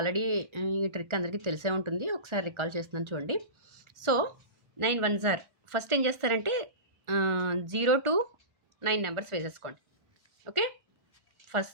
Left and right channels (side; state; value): left; late; 1.4 ms